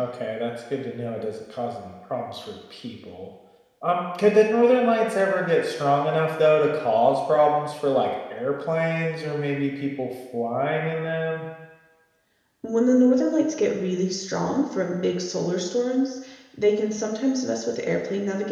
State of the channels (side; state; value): both; identical; correlation 1.00